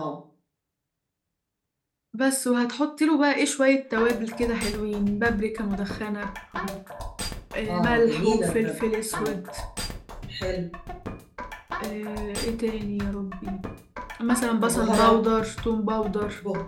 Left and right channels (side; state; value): both; identical; correlation 1.00